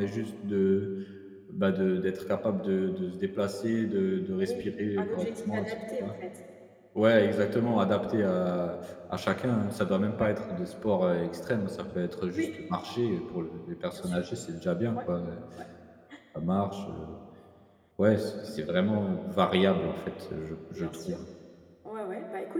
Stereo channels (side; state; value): both; identical; correlation 1.00